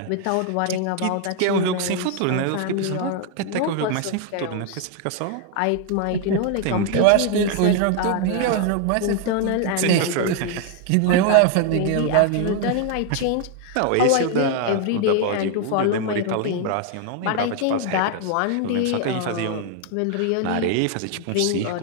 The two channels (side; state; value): both; different; correlation 0.00